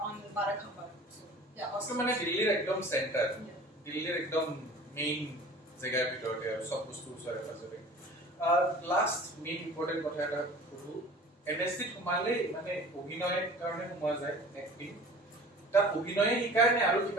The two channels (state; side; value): normal; both; correlation 0.44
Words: on Barakhamba. So yeah, hostel মানে দিল্লীৰ একদম centre দিল্লীৰ একদম main জায়গাৰ ভিতৰতে আৰু সব বস্তু ওচৰে পাজৰে লাষ্ট মেইন ইম্পৰ্টেন্ট কথা এটা কৰো NSD সোমালে মানে অভিনয়ৰ কাৰণে সোমোৱা যায় এক্টিং তাত অভিনয়ে শিকায় নে আৰু